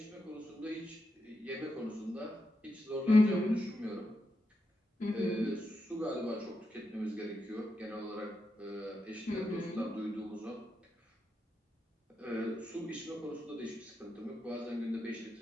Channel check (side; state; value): both; normal; correlation 0.85